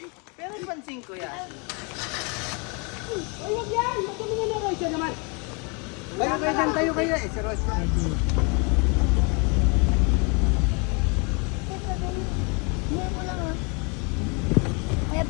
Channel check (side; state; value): right; quieter; 32.7 dB